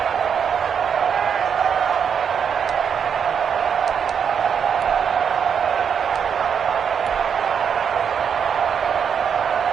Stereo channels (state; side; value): quieter; left; 7.3 dB